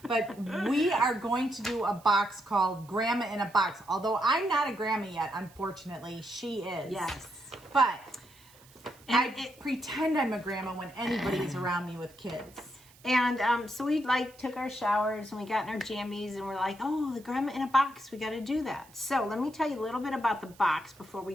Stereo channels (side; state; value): right; noise; hiss, 25 dB below the sound